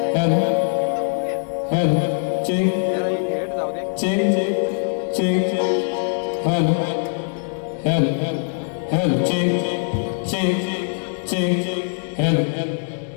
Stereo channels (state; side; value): silent; right; digital silence